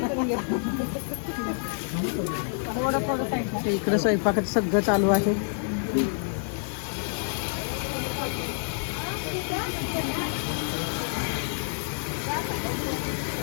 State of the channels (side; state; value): right; silent; 60 dB below the other